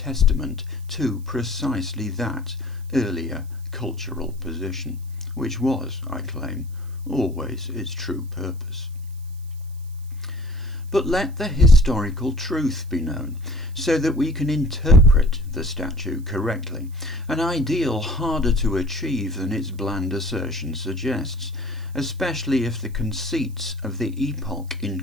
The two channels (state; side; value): noise; right; hiss, 27 dB below the sound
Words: to precisely that earlier cultural position, which was, I claim, always its true purpose. But let the historical truth be known, so that we can interpret the statue correctly, an ideal harder to achieve than its bland assertion suggests, especially if the conceits of the epoch in